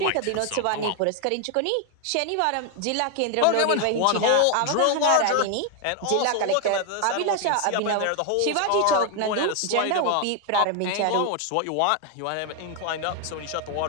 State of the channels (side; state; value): both; different; correlation 0.01